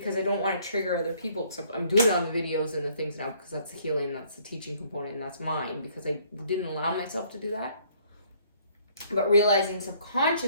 I don't want to trigger other people, except I'm doing it on the videos and the things now because that's the healing, that's the teaching component, and that's mine because I didn't allow myself to do that. But realizing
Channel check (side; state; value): both; inverted; correlation -0.62